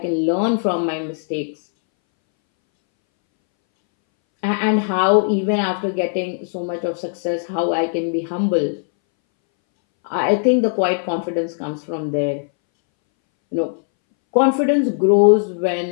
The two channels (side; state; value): right; silent; 64 dB below the other